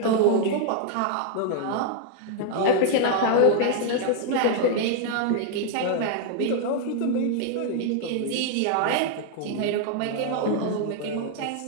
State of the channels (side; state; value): both; different; correlation 0.00